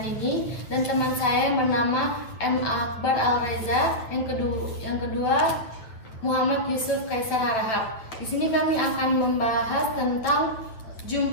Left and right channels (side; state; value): right; late; 9.0 ms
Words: Nini dan teman saya yang bernama M. Akbar Al-Reza, yang kedua Muhammad Yusuf Kaisar Harahap. Di sini kami akan membahas tentang